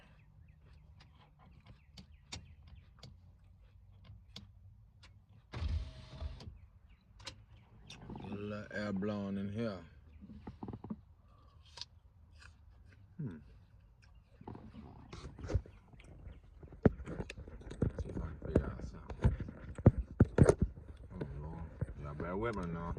Get a little air blowing in here. See if I can figure out something. Oh Lord. Y'all bear with me now.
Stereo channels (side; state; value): both; identical; correlation 1.00